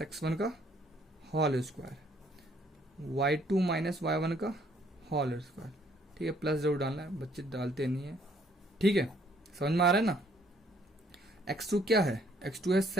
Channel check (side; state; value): both; normal; correlation 0.64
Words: x1 का होल स्क्वायर, y2 - y1 का होल स्क्वायर। ठीक है, प्लस जरूर डालना है, बच्चे डालते नहीं है। ठीक है, समझ में आ रहा है ना। x2 क्या है, x2 है